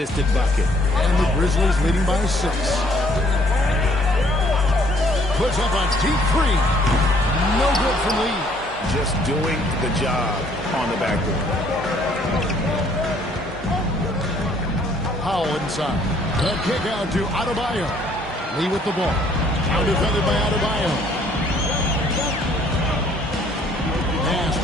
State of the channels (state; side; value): normal; both; correlation 0.62